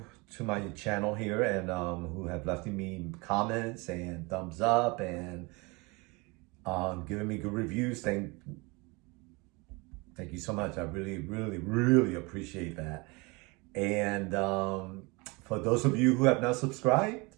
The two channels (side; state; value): left; quieter; 26.7 dB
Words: my channel here and who have left me comments and thumbs up and giving me good reviews. Thank you so much. I really appreciate that. And for those of you who have not subscribed,